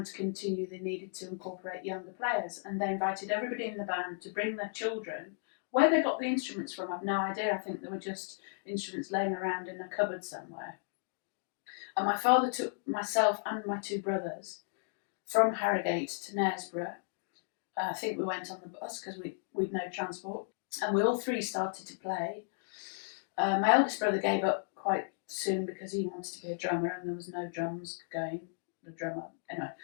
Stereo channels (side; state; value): right; silent; digital silence